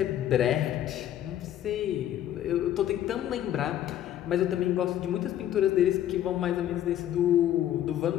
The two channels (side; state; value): right; quieter; 11.7 dB